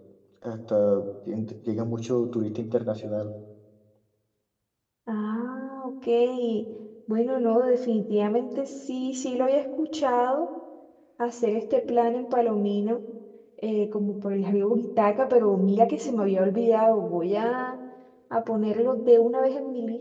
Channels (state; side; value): identical; both; correlation 1.00